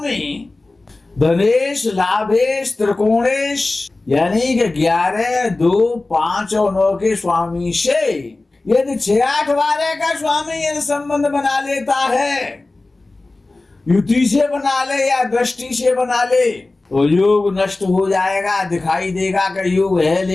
धनेश, लाभेश, त्रिकोणेश, यानी कि 11, 2, 5 और 9 के स्वामी से यदि 6, 8, 12 का स्वामी यदि संबंध बना लेता है, युति से बना ले या दृष्टि से बना ले, तो योग नष्ट हो जाएगा। दिखाई देगा कि योग है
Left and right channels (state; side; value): quieter; right; 3.1 dB